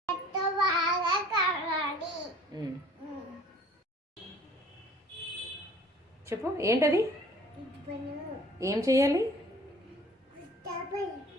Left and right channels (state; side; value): normal; both; correlation 0.51